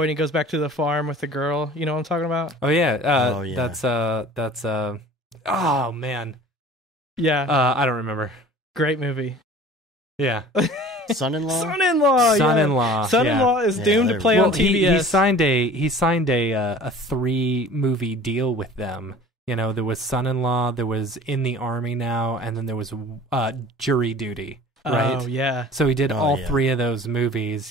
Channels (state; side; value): normal; both; correlation 0.45